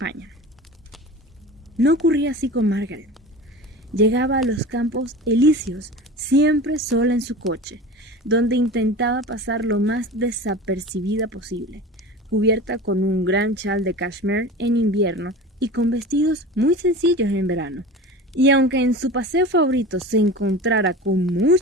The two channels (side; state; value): both; normal; correlation 0.34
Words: No ocurría así con Margaret. Llegaba a los campos elíseos siempre sola en su coche, donde intentaba pasar lo más desapercibida posible, cubierta con un gran chal de cashmere en invierno y con vestidos muy sencillos en verano. Y aunque en su paseo favorito se encontrara con